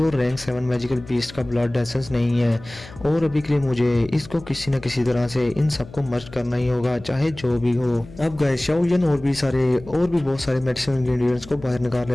रैंक 7 मैजिकल बीस्ट का ब्लड एसेंस नहीं है और अभी के लिए मुझे इसको किसी न किसी तरह से इन सबको मर्ज करना ही होगा, चाहे जो भी हो। अब गाइस शाओयन और भी बहुत सारे मेडिसिनल इंग्रेडिएंट्स को बाहर निकाल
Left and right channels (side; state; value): left; noise; hum, 18 dB below the sound